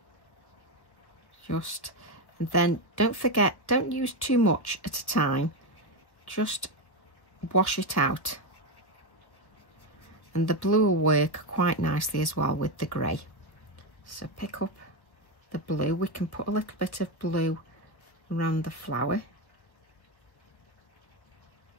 And then don't forget, don't use too much at a time, just wash it out, and the blue will work quite nicely as well with the grey. So pick up the blue. We can put a little bit of blue around the flower.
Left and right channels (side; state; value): right; late; 1.3 ms